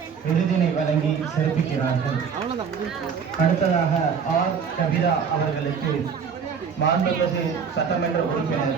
விருதினை வழங்கி சிறப்பிக்கிறார்கள். அடுத்ததாக ஆர். கவிதா அவர்களுக்கு மாண்புமிகு சட்டமன்ற உறுப்பினர்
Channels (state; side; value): quieter; left; 6.5 dB